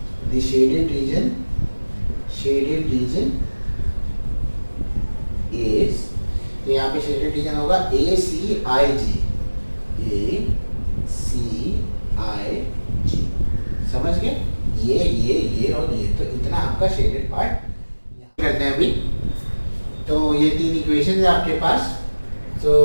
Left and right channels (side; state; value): both; inverted; correlation -1.00